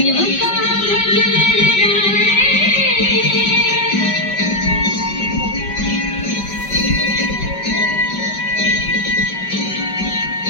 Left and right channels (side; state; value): right; late; 5.2 ms